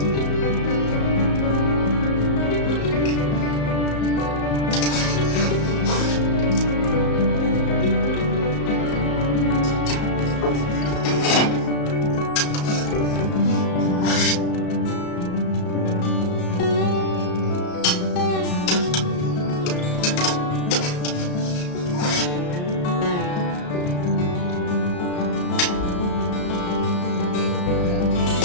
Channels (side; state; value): right; late; 34 ms